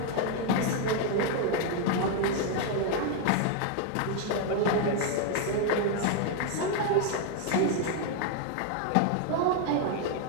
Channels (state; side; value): different; both; correlation 0.01